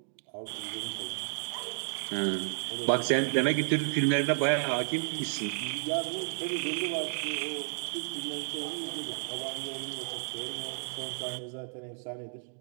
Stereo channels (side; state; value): left; silent; 56 dB below the other